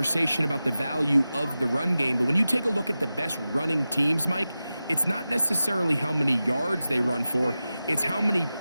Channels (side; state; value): both; inverted; correlation -0.94